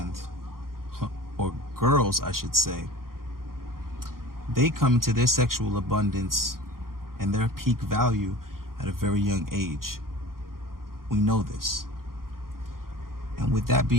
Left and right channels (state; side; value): late; left; 0.92 ms